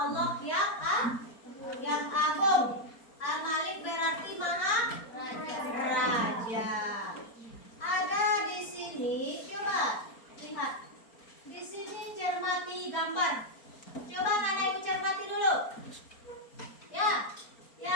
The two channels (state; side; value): late; right; 4.4 ms